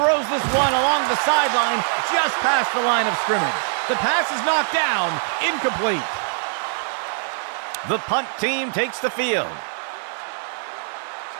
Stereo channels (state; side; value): silent; left; digital silence